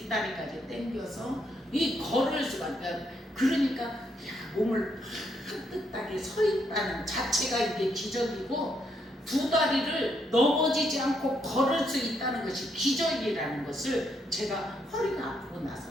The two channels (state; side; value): normal; both; correlation 0.75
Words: 당겨서 이 걸을 수가 없어요. 그러니까 야, 몸을 깍듯하게 서 있다는 자체가 이게 기적이고 두 다리를 넘어지지 않고 걸을 수 있다는 것이 기적이라는 것을 제가 허리가 아프고